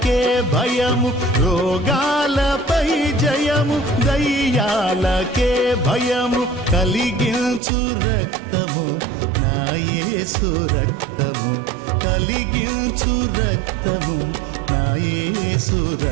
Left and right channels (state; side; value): drops out; left; at 7.6 s